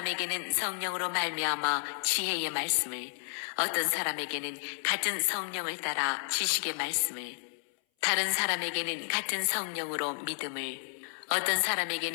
성령으로 말미암아 지혜의 말씀을, 어떤 사람에게는 같은 성령을 따라 지식의 말씀을, 다른 사람에게는 같은 성령으로 믿음을, 어떤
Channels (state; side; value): silent; right; 57 dB below the other